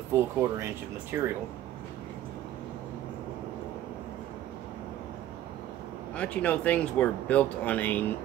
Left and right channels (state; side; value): quieter; left; 12.8 dB